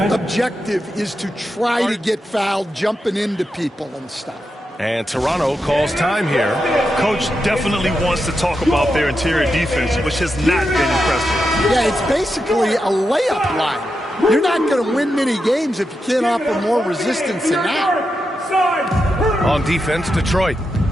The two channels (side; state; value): both; normal; correlation 0.87